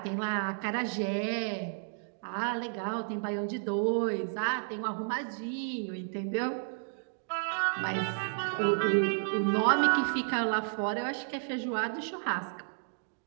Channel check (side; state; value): left; silent; digital silence